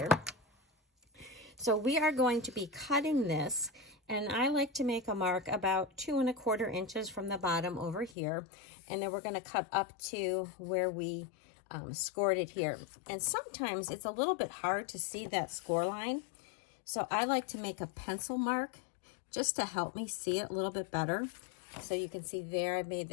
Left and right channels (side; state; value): right; drops out; at 8.2 s